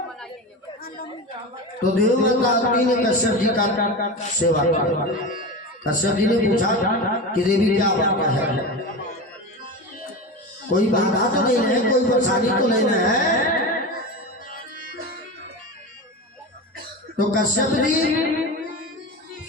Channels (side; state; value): both; normal; correlation 0.25